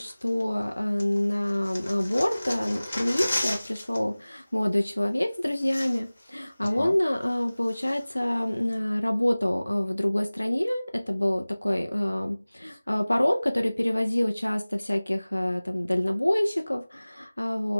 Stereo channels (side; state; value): both; inverted; correlation -0.99